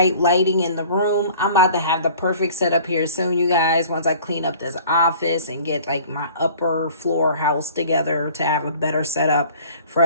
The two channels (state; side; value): inverted; both; correlation -0.49